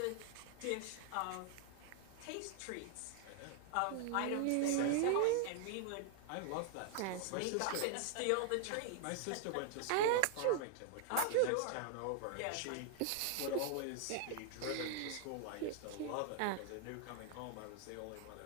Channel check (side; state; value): both; different; correlation 0.00